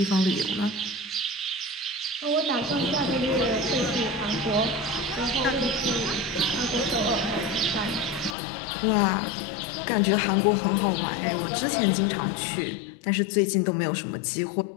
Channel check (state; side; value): drops out; right; at 8.3 s